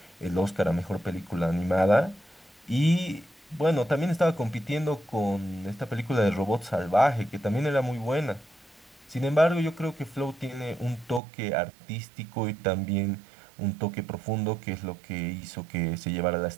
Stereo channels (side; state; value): left; drops out; at 11.2 s